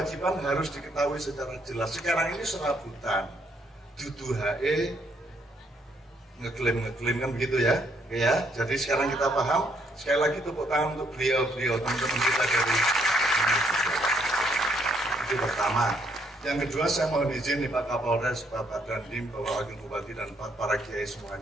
harus diketahui secara jelas. Sekarang ini serabutan, dudu hae ngeklaim kan begitu ya. Oke ya. Jadi sekarang kita paham. Sekali lagi tepuk tangan untuk beliau teman-teman kita dari itu pertama. Yang kedua saya mohon izin nih Pak Kapolres, Bapak Dandim, Bapak Wakil Bupati dan para kiai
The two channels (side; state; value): both; normal; correlation 0.70